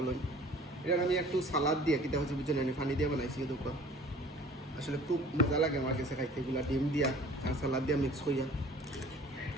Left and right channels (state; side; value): normal; both; correlation 0.48